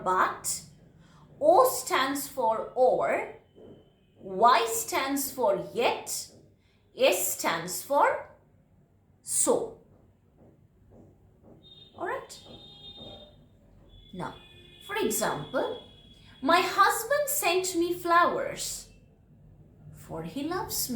but. O stands for or. Y stands for yet. S stands for so. Alright? Now, for example, my husband sent me flowers, for he loves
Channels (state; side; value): identical; both; correlation 1.00